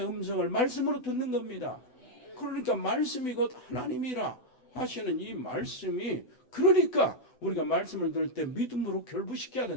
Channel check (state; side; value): late; right; 8.0 ms